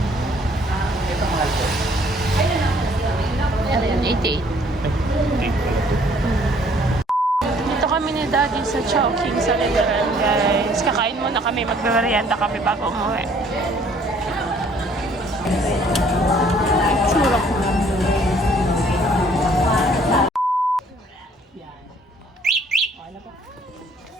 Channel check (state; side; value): normal; both; correlation 0.60